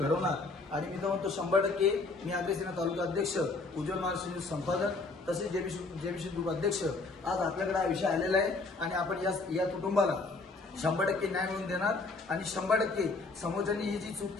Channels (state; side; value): quieter; right; 3.7 dB